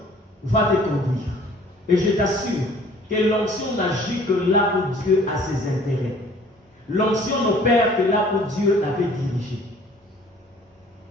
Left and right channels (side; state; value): both; normal; correlation 0.53